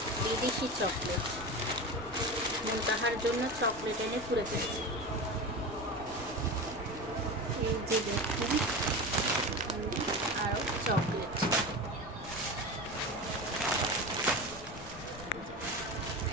বিদেশি চকলেট। তাহার জন্য চকলেট এনে পুরে ফেলছে। এই যে দেখুন আরো চকলেট।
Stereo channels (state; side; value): noise; left; rumble, 16 dB below the sound